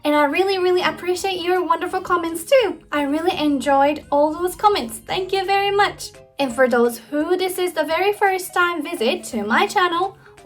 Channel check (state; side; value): identical; both; correlation 1.00